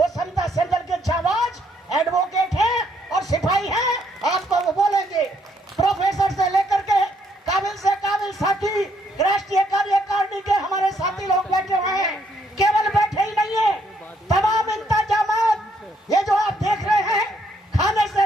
समता संदल के जाबाज एडवोकेट हैं और सिपाही हैं, आपको वो बोलेंगे। प्रोफेसर से लेकर के काबिल से काबिल साथी राष्ट्रीय कार्यकारिणी के हमारे साथी लोग बैठे हुए हैं। केवल बैठे ही नहीं है, तमाम इंतजामात ये जो आप देख रहे हैं, खाने से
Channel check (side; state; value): both; normal; correlation 0.70